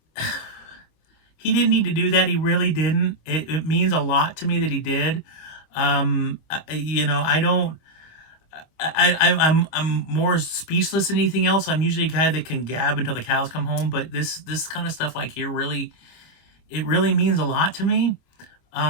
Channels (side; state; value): right; late; 25 ms